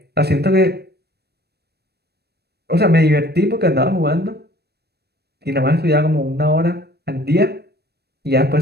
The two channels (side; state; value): left; late; 0.47 ms